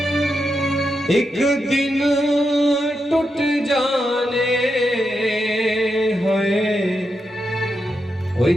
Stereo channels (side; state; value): both; normal; correlation 0.86